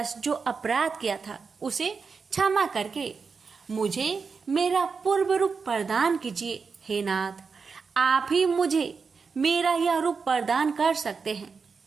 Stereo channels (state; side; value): quieter; left; 5.2 dB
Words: जो अपराध किया था उसे क्षमा करके मुझे मेरा पूर्व रूप प्रदान कीजिए। हे नाथ, आप ही मुझे मेरा यह रूप प्रदान कर सकते हैं।